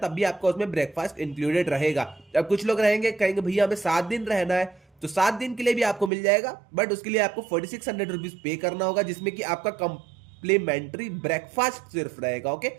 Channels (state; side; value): drops out; left; at 6.1 s